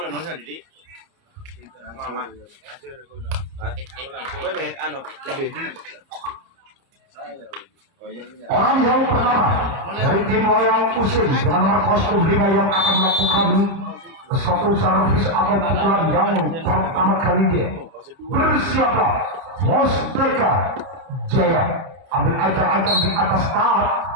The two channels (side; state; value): left; late; 31 ms